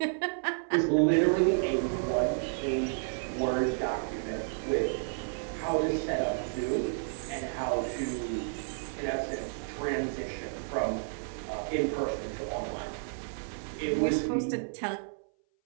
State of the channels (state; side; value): silent; left; 57 dB below the other